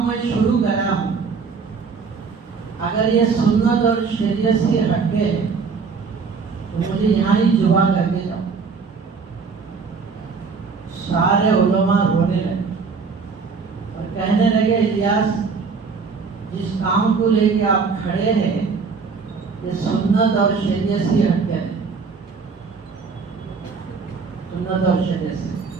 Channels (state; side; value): quieter; left; 5.1 dB